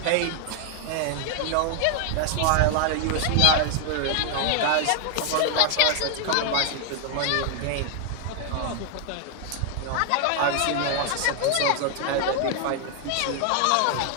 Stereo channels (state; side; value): different; both; correlation 0.00